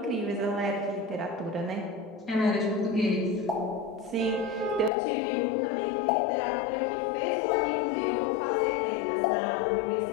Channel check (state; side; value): drops out; right; at 4.9 s